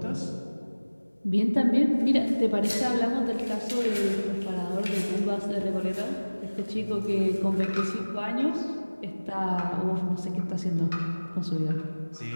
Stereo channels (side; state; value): both; inverted; correlation -1.00